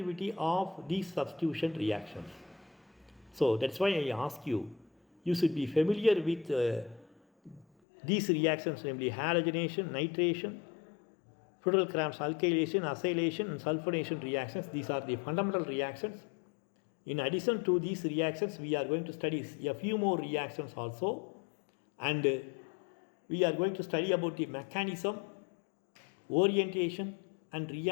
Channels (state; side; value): drops out; right; at 7.7 s